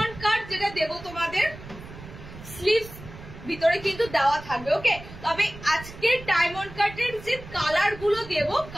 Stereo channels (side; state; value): right; noise; rumble, 15 dB below the sound